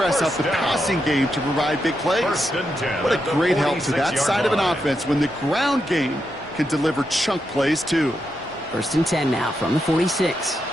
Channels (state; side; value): normal; both; correlation 0.84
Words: out the passing game to provide big plays. What a great help to that side of an offense when the ground game can deliver chunk plays too. 1st and 10 now from the 46.